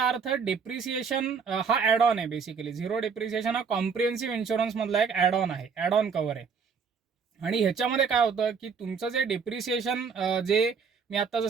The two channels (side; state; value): left; quieter; 5.9 dB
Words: अर्थ डेप्रिसिएशन हा ॲड ऑन आहे. बेसिकली झिरो डेप्रिसिएशन हा कॉम्प्रिहेन्सिव्ह इन्शुरन्स मधला एक ॲड ऑन आहे, ॲड ऑन कव्हर आहे. आणि ह्याच्यामध्ये काय होतं की तुमचं जे डेप्रिसिएशन जे मी आता